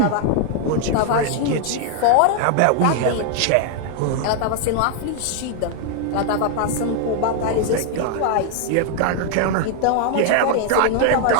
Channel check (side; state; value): both; different; correlation 0.00